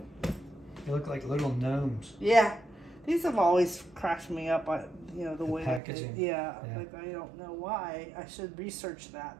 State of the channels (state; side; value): drops out; left; at 5.8 s